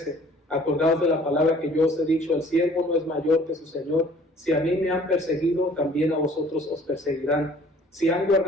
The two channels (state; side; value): normal; both; correlation 0.53